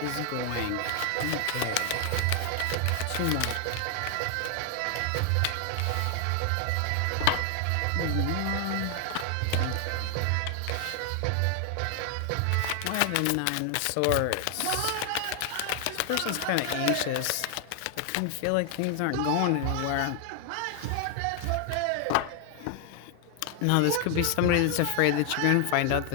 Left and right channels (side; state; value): both; different; correlation 0.00